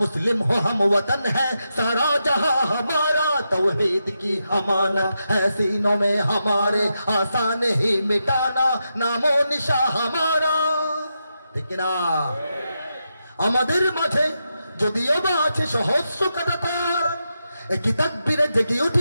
मुस्लिम हो हम वतन है सारा जहां हमारा। तौहीद की अमानत है सीनों में हमारे, आसान ही मिटाना नामो निशा हमारा। ठीक ना? আমাদের মাঝে যদিও বা আছে সহস্র কাঁটাতার, একই তাকবীরে জেগে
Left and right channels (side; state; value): both; inverted; correlation -0.86